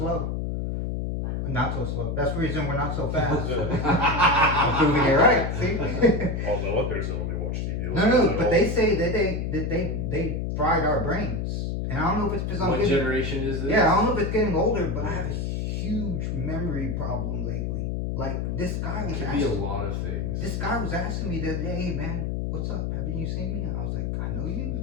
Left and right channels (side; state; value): left; noise; hum, 1 dB below the sound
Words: Wow. Not so slow. That's the reason we're not so fast. Yeah. Proving it right. See? Although my parents don't really watch TV. No, but they say that they fried our brains, and I don't know if it's because I'm What getting, generation is this? yeah, I don't know if it's getting older, but I have a huge memory problem lately. Like this guy It was could be a asking, lot of things. this guy was asking me the other day, hey man, what's up? Haven't you seen me? And I was like, I know you.